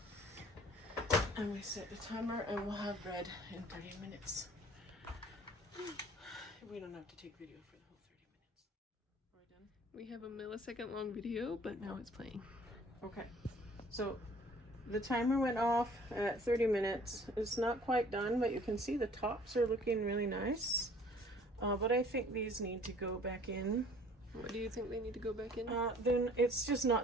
And we set the timer and we'll have bread in 30 minutes. We don't have to take video for the whole 30 minutes. Are we done? We have a millisecond long video, but now it's playing. Okay, so the timer went off at 30 minutes. It's not quite done, but you can see the tops are looking really nice. But I think these need to go back in. What do you think they need to go back in? Then it's just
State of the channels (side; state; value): both; normal; correlation 0.52